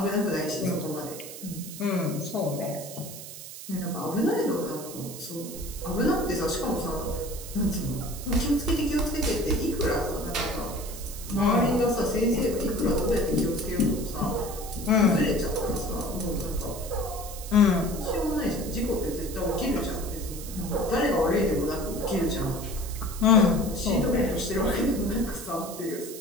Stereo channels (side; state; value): right; noise; hiss, 12 dB below the sound